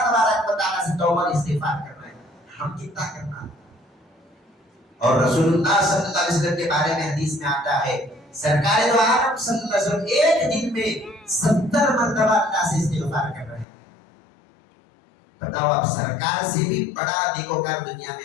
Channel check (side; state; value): right; drops out; at 13.7 s